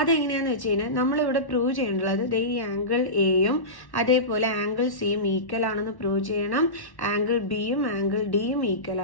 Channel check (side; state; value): right; late; 1.1 ms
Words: വെച്ച് കഴിഞ്ഞാൽ നമ്മളിവിടെ പ്രൂവ് ചെയ്യേണ്ടത് ഈ ആംഗിൾ എയും അതേപോലെ ആംഗിൾ സിയും ഈക്വൽ ആണെന്ന് പ്രൂവ് ചെയ്യണം. ആംഗിൾ ബിയും ആംഗിൾ ഡിയും ഈക്വൽ